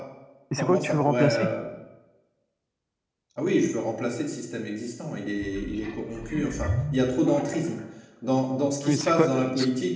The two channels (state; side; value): identical; both; correlation 1.00